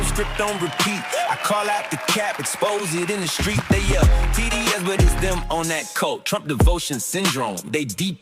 script on repeat. I call out the cap, expose it in the street. They yell TDS, but it's them on that coat. Trump devotion syndrome, they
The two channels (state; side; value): identical; both; correlation 1.00